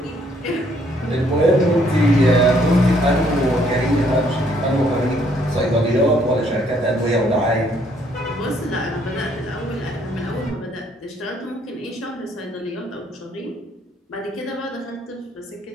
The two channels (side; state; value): both; normal; correlation 0.67